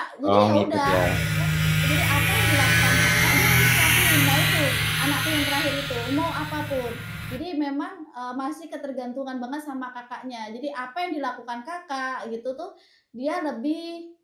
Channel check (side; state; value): both; identical; correlation 1.00